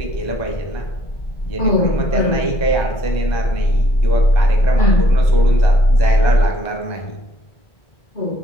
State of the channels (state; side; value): late; right; 1.3 ms